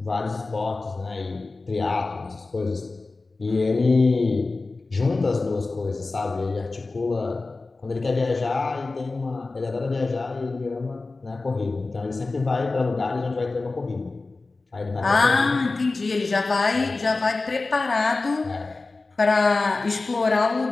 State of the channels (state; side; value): quieter; right; 3.5 dB